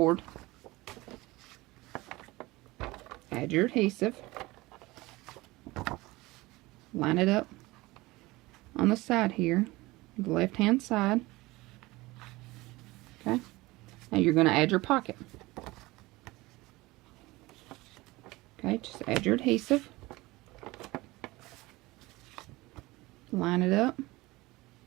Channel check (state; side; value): quieter; left; 20.8 dB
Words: Add your adhesive. Line it up on the side here, the left-hand side. Okay, now you're going to add your pocket. Okay, just add your adhesive. Line it up.